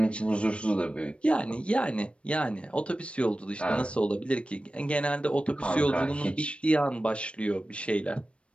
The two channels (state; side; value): late; right; 0.059 ms